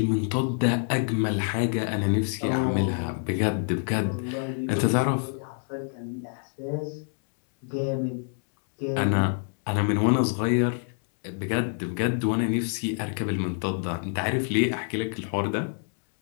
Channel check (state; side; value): silent; right; 60 dB below the other